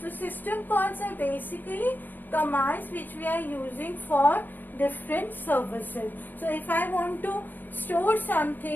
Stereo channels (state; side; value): late; right; 0.088 ms